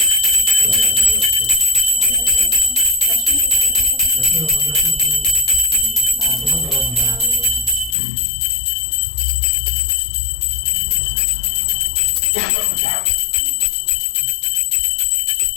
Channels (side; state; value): right; drops out; at 8.0 s